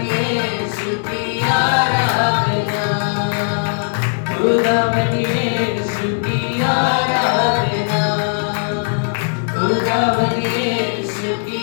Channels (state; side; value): silent; right; digital silence